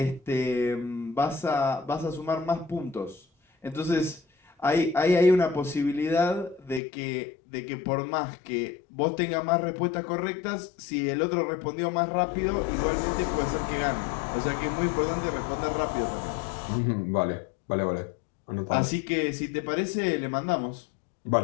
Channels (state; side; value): drops out; right; at 6.8 s